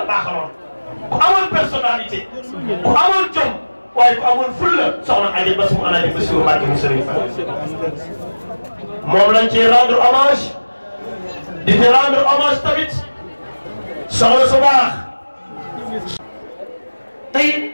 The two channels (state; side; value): inverted; both; correlation -1.00